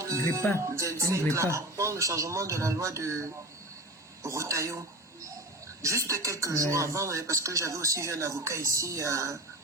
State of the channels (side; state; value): both; normal; correlation 0.31